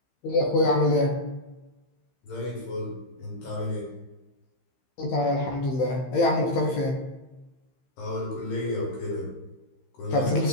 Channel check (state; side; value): late; right; 15 ms